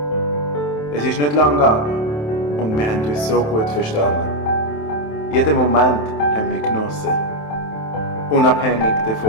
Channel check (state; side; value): late; right; 27 ms